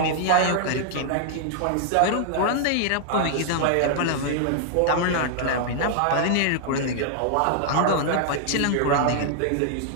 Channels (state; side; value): different; both; correlation -0.01